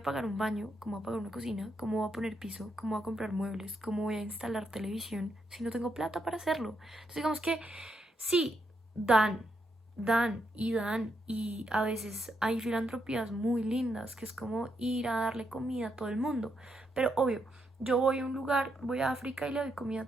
pagar un baño, cómo voy a pagar una cocina, cómo voy a poner piso, cómo voy a comprar muebles, cómo voy a instalar televisión si no tengo plata para hacerlo. Entonces digamos que sí, dan y a veces hay filantropías muy lindas que es como ir a darle comida a todo el mundo. Pero obvio, yo voy a un lugar, voy a África y le doy comida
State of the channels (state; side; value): normal; both; correlation 0.79